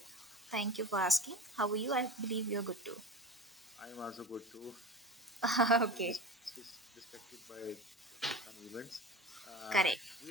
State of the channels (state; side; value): normal; both; correlation 0.32